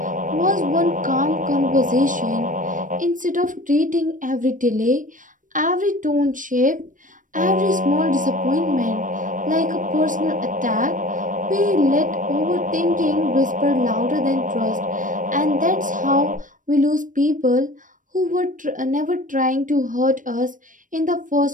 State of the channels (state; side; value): late; left; 0.38 ms